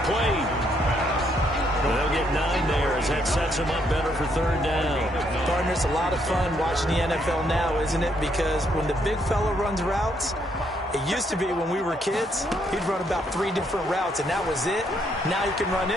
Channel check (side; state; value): both; normal; correlation 0.73